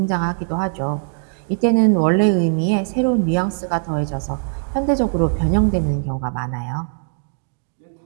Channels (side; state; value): left; silent; 65 dB below the other